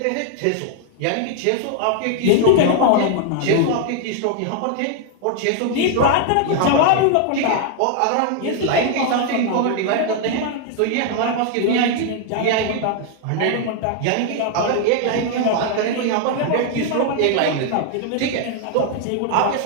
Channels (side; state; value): both; different; correlation 0.00